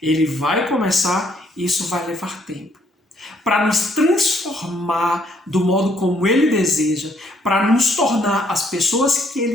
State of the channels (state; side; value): normal; both; correlation 0.68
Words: vai começar, e isso vai levar tempo. Para nos transformar do modo como Ele deseja, para nos tornar as pessoas que